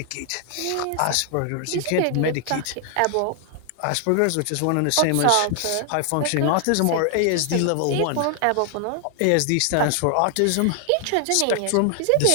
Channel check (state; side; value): different; both; correlation 0.00